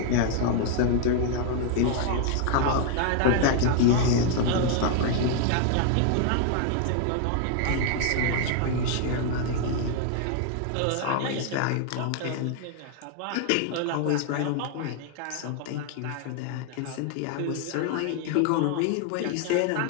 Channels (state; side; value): different; both; correlation 0.00